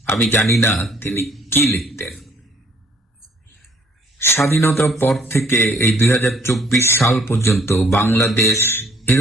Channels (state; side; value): normal; both; correlation 0.60